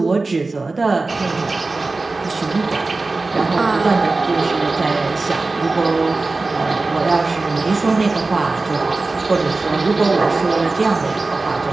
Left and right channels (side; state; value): left; quieter; 3.5 dB